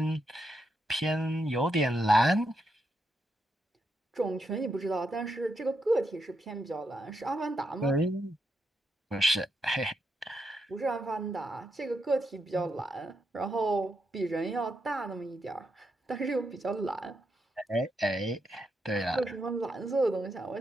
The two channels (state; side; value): normal; both; correlation 0.82